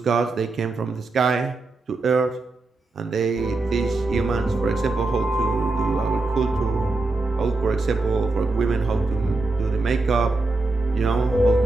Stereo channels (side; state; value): left; quieter; 3.3 dB